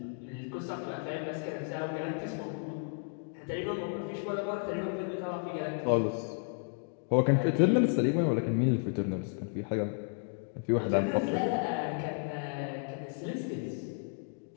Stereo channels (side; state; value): right; silent; 56 dB below the other